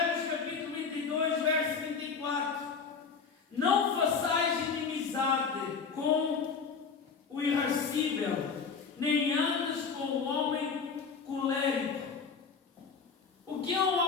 capítulo 22, verso 24: não façais inimizade com o irascível, nem andes com o homem colérico. O que é um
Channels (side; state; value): right; quieter; 5.5 dB